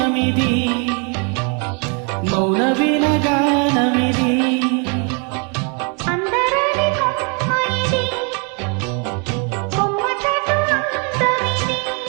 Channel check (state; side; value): quieter; left; 36.8 dB